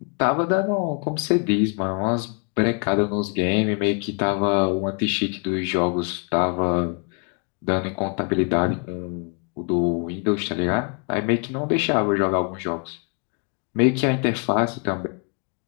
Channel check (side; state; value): right; quieter; 39.0 dB